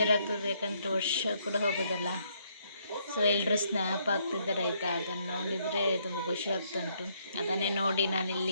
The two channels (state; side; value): inverted; both; correlation -0.71